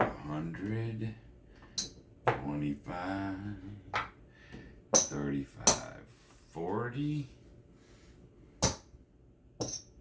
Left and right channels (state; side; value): identical; both; correlation 1.00